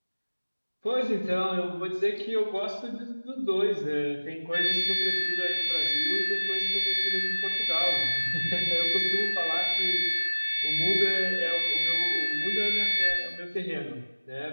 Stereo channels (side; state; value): both; inverted; correlation -1.00